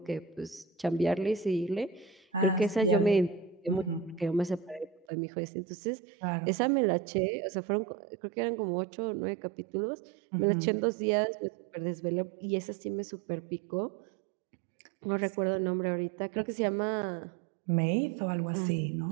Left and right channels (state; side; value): drops out; left; at 5.1 s